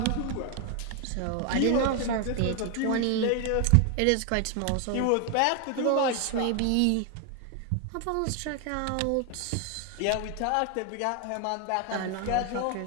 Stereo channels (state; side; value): different; both; correlation 0.01